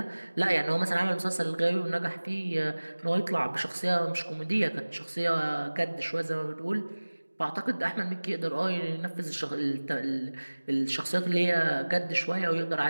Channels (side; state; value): both; inverted; correlation -1.00